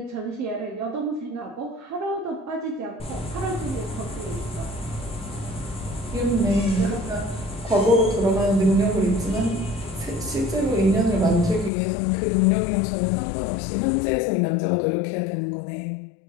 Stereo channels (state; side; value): drops out; right; at 11.7 s